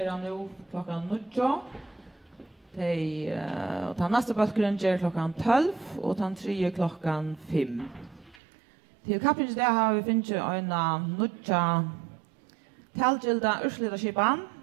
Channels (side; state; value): left; drops out; at 8.3 s